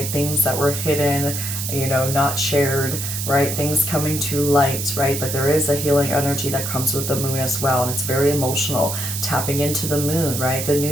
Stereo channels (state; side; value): noise; right; hiss, 4 dB below the sound